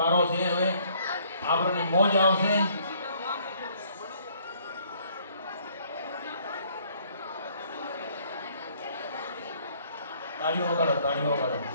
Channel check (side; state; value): both; inverted; correlation -0.63